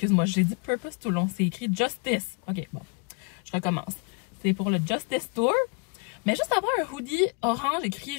j'ai dit Purpose tout le long, c'est écrit Justice. Ok, bon, je recommence. C'est pour le Justice Tour. Mais juste avoir un hoodie orange écrit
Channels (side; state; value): right; quieter; 33.4 dB